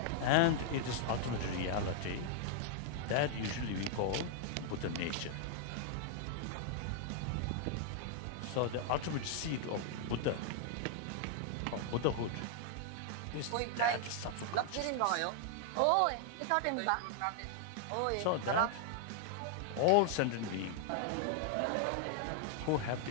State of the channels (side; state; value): both; different; correlation 0.00